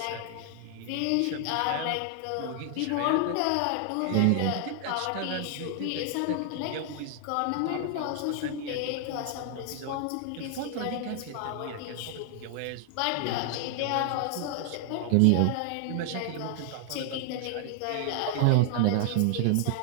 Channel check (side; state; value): both; different; correlation 0.00